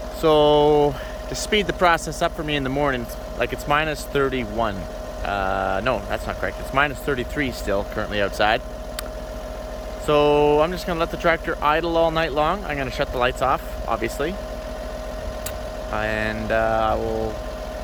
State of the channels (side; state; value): both; identical; correlation 1.00